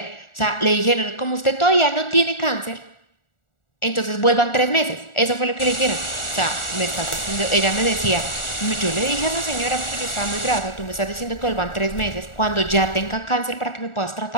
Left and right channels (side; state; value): right; late; 1.4 ms